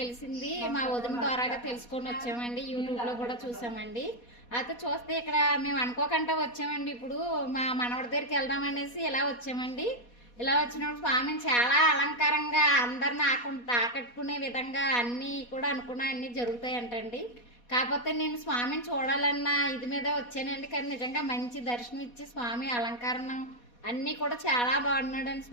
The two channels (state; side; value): late; right; 4.2 ms